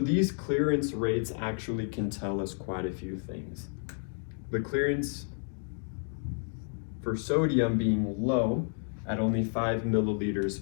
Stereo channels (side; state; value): right; silent; 57 dB below the other